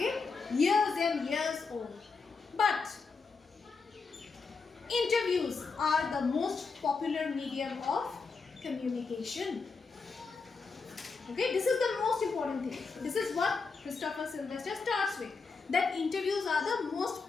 Years and years old. But interviews are the most popular medium of communication. Okay, this is the most important thing. This is what Christopher Sylvester starts with. That interviews are the most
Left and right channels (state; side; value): quieter; right; 4.6 dB